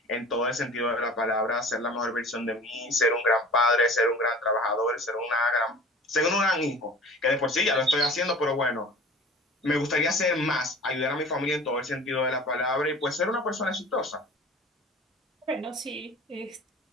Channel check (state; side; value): normal; both; correlation 0.43